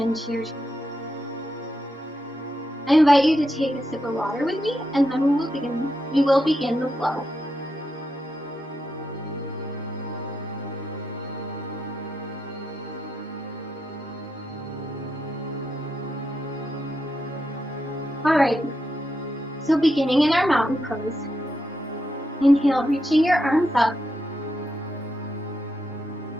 to your chest. I invite you to take a sip of water with me, and then we will begin the flow. Alright, so beginning in our mountain pose, inhale, reaching your arms up.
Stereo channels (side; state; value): both; normal; correlation 0.83